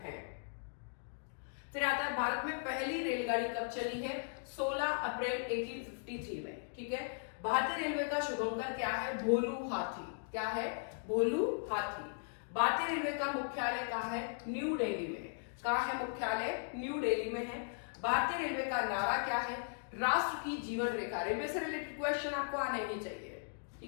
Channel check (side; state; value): right; silent; digital silence